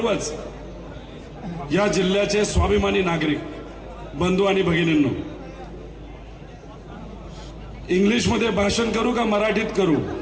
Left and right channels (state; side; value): identical; both; correlation 1.00